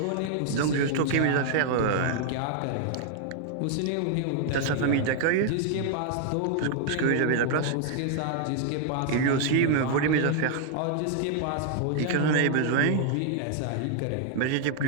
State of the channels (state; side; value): different; both; correlation 0.00